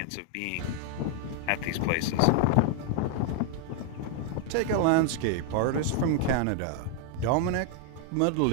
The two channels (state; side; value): different; both; correlation 0.00